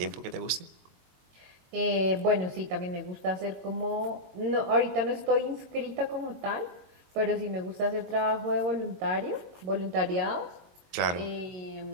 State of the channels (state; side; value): late; left; 23 ms